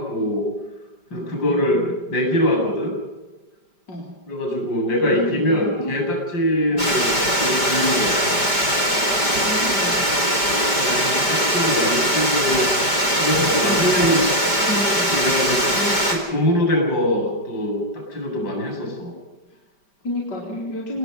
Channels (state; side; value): late; right; 5.1 ms